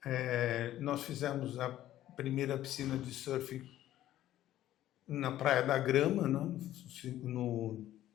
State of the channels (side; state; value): right; quieter; 13.3 dB